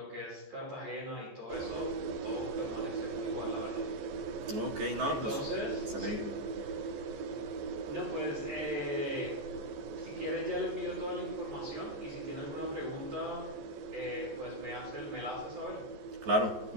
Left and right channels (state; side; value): late; left; 14 ms